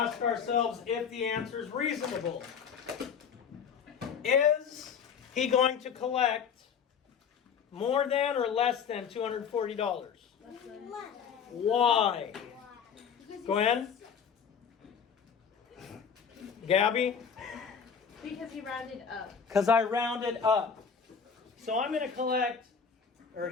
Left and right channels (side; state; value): right; quieter; 6.8 dB